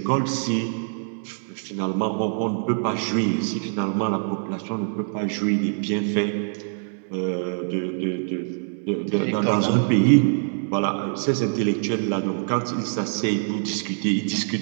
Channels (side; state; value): left; silent; 62 dB below the other